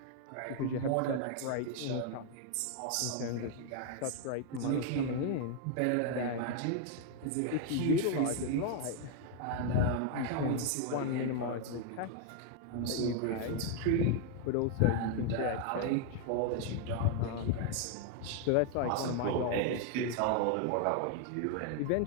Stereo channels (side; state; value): both; different; correlation 0.00